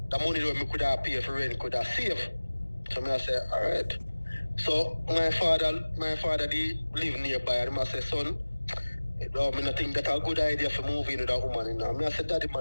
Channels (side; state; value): both; inverted; correlation -1.00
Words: the money that me could have pay for rent could have save. So me I say, alright. So my father they live nearby, and I say, son, me not think that's a good idea for moving with that woman, Me I say, daddy